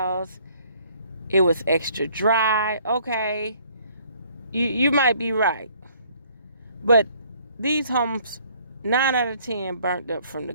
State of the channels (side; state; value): both; inverted; correlation -0.61